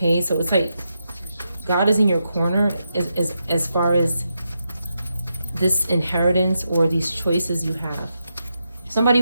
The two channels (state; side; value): inverted; both; correlation -0.85